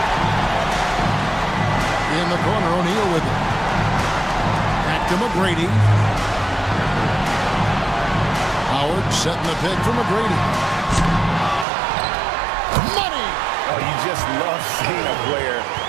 In the corner, O'Neal with it. Back to McGrady. Howard setting the pick for McGrady. Money! Oh, you just love seeing a player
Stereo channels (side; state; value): left; drops out; at 11.7 s